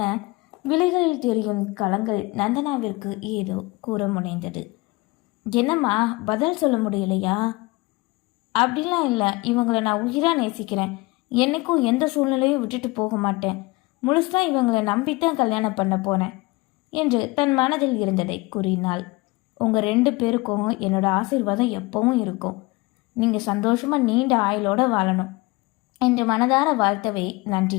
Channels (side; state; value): right; quieter; 23.4 dB